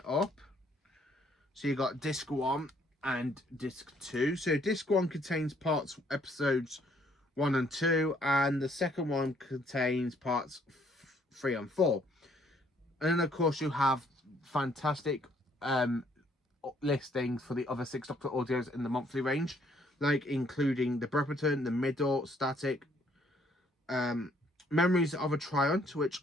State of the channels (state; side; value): normal; both; correlation 0.65